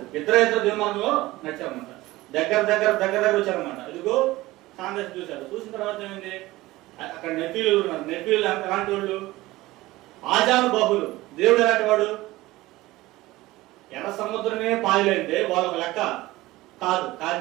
ఇద్దరు దేవుని మార్గంలో నడిచారన్నమాట. దగ్గర వచ్చారన్నమాట. ఇదిగో కాంగ్రెస్ చూశారు. చూసిన తర్వాత ఏమైంది, అక్కడ నెఫీలు ఉన్నారు. నెఫీలు ఎలాంటి వాళ్ళు? ఆజాను బాహులు. దేవుడు ఎలాంటి వాడు? ఎర్ర సముద్రమే పాయలేంటే వాళ్ళొక లెక్క కాదు.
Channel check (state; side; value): quieter; left; 18.5 dB